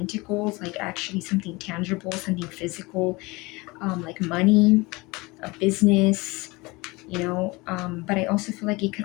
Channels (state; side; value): quieter; right; 23.9 dB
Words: like actually something tangible, something physical, like money, a business, you know, but I also feel like it